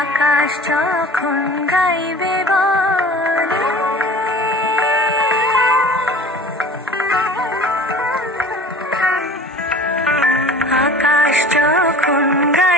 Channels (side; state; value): both; normal; correlation 0.42